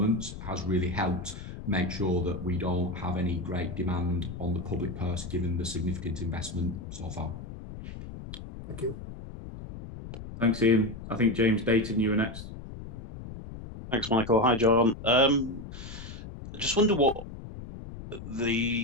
has really helped make sure that we don't have any great demand on the public purse given the significant investment so far. Thank you. Thanks, Ian. I think James Dayton, you were next. Thanks, Michael. Hi, John. I just wonder what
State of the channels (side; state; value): left; noise; rumble, 11 dB below the sound